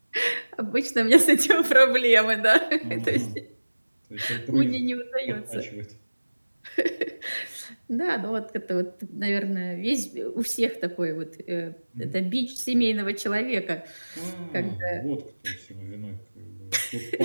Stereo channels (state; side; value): inverted; both; correlation -1.00